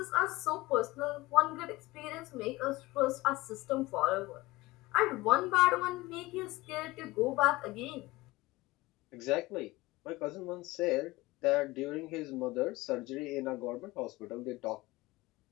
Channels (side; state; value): right; quieter; 19.7 dB